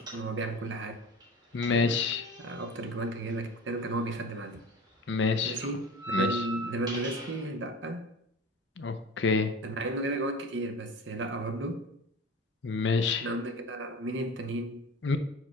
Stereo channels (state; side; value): normal; both; correlation 0.35